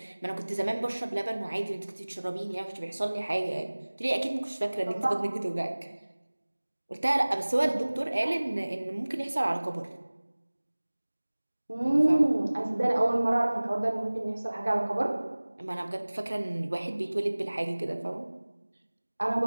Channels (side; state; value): both; inverted; correlation -1.00